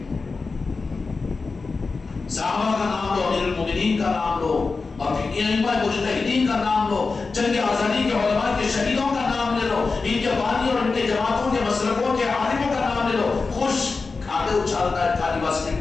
صحابہ کا نام لو، امیر المومنین کا نام لو، اور پھر ائمہ مجتہدین کا نام لو، جنگ آزادی کے علماء کے شہیدوں کا نام لے لو، ان کے بانی اور ان کے جماعتوں کے مسلکوں کے عالموں کا نام لے لو، خوش کھاتے اچھالتا ہے کھالی واسطے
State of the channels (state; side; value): quieter; right; 4.2 dB